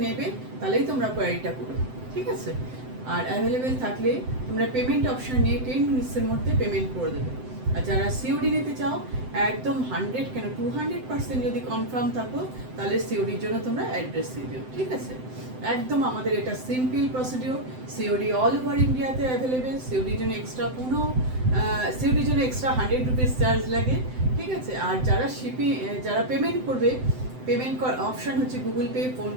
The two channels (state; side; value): late; left; 7.8 ms